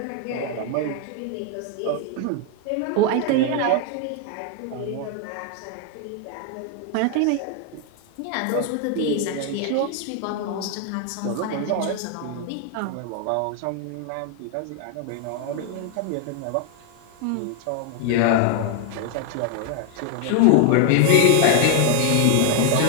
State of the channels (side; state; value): both; different; correlation 0.00